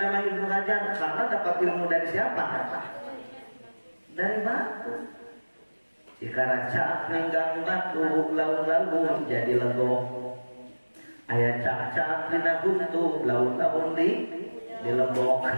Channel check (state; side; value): inverted; both; correlation -1.00